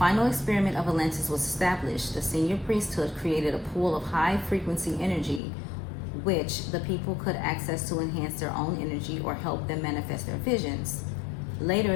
experiment of Atlantis was established, the senior priesthood created a pool of high-frequency energy which the people could access to enhance their own energy or help them manifest their visions. Later,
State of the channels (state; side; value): drops out; right; at 5.4 s